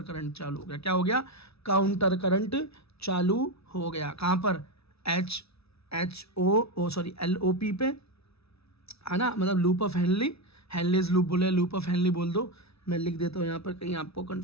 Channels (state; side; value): late; right; 0.78 ms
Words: करंट चालू हो गया। क्या हो गया? काउंटर करंट चालू हो गया। कहाँ पर? LOP पे, है ना, मतलब लूप ऑफ हेनली, हेनलीज लूप बोले, लूप ऑफ हेनली बोल दो, मैं लिख देता हूँ यहाँ पर कहीं आपको